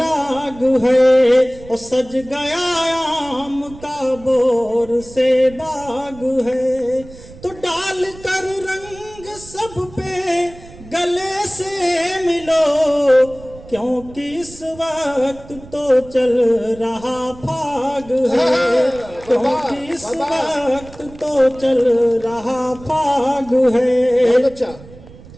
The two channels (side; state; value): right; noise; rumble, 19 dB below the sound